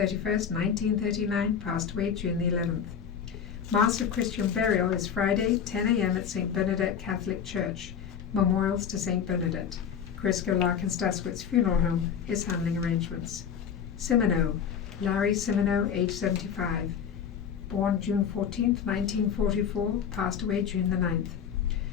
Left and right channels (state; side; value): quieter; right; 7.8 dB